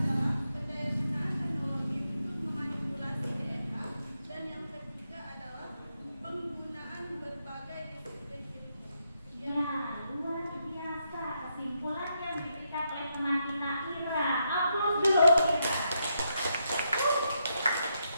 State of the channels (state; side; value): inverted; both; correlation -0.81